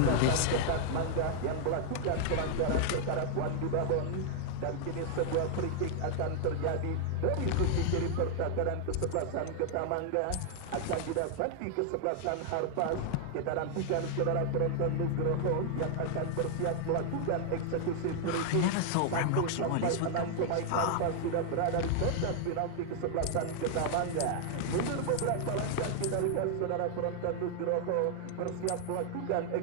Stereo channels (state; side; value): different; both; correlation 0.00